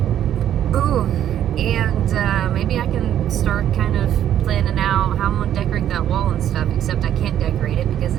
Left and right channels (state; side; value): quieter; left; 10.8 dB